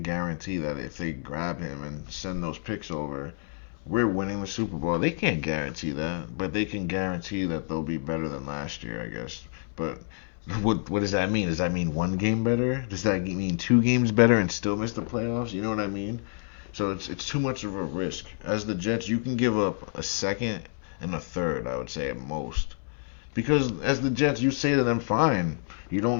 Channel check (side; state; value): right; silent; 59 dB below the other